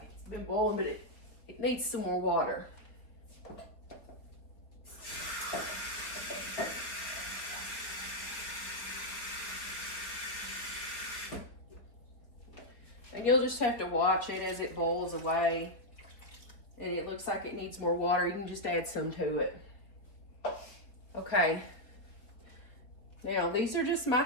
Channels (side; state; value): right; late; 4.2 ms